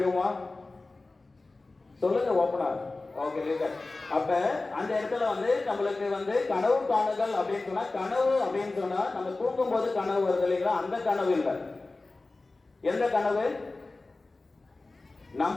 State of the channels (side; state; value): right; quieter; 3.3 dB